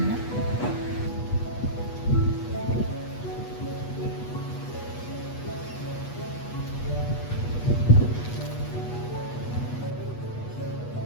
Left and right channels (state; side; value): late; right; 8.3 ms